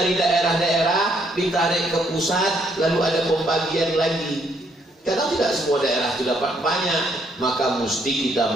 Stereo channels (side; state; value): both; normal; correlation 0.71